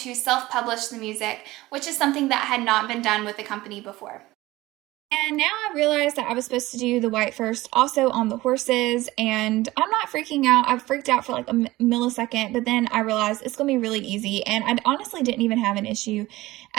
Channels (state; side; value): quieter; left; 18.3 dB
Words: self-publish the music, which is something that had not been done with the company before. And now I realized that I was supposed to do the white first also on the horses, and I'm not freaking out. I freaked out for a millisecond, but then I realized it's going to be really easy, and I honestly didn't even have an issue